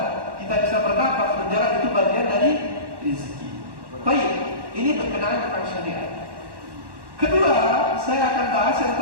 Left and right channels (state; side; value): late; left; 1.1 ms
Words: kita bisa bernafas, berjalan, itu bagian dari rezeki. Baik, ini berkenaan tentang syariat. Kedua, saya akan bahas yang